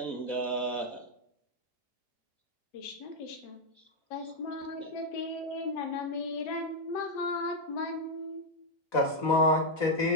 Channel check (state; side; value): late; right; 4.1 ms